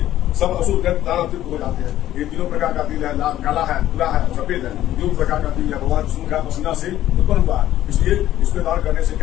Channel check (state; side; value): quieter; right; 13.1 dB